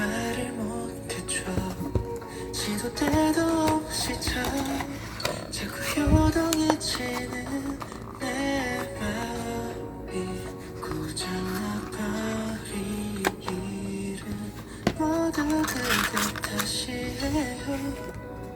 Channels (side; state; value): both; identical; correlation 1.00